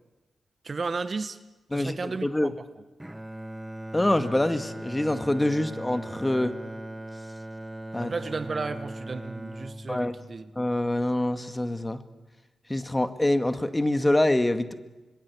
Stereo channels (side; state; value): both; normal; correlation 0.98